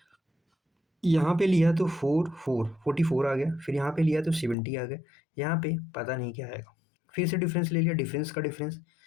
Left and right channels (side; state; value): right; drops out; at 4.5 s